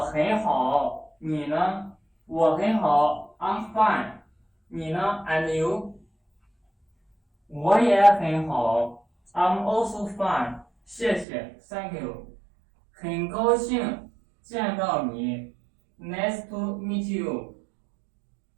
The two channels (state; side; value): drops out; left; at 11.2 s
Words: 好，你呢？我很好 I'm fine. 你呢 And you? 我也很好 I'm also fine. 谢谢 Thank you. 很高兴见到你 Nice to meet you.